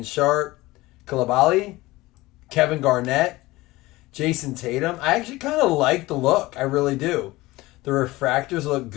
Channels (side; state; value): right; quieter; 19.6 dB